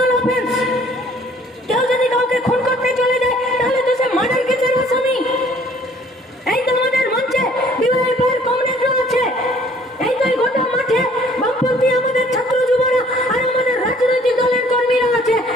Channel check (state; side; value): normal; both; correlation 0.57